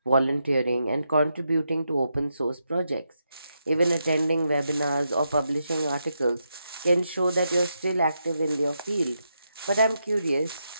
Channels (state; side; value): inverted; both; correlation -0.83